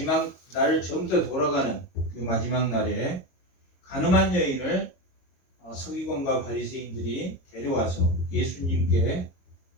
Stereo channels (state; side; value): late; right; 22 ms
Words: 날 처음부터 돌아가는 그 마지막 날에 가늠한 여인을 서기관과 바리새인들이 데려와서 예수님께